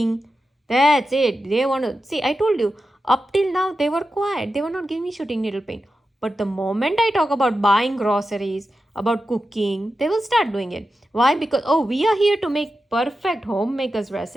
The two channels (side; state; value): both; normal; correlation 0.91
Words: that's it. They want to see. I told you, up till now, they were quiet. They were not giving me shooting needle pain. But the moment I talk about buying groceries, about cooking, they will start doing it. Why? Because, oh, we are here to make perfect homemaker's